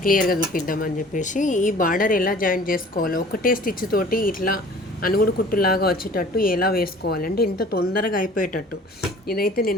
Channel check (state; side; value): normal; both; correlation 0.48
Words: క్లియర్గా చూపిద్దామని చెప్పేసి ఈ బార్డర్ ఎలా జాయిన్ చేసుకోవాలో ఒకటే స్టిచ్ తోటి ఇట్లా అనుగుడు కుట్టులాగా వచ్చేటట్టు ఎలా వేసుకోవాలంటే ఇంత తొందరగా అయిపోయేటట్టు. ఇదైతే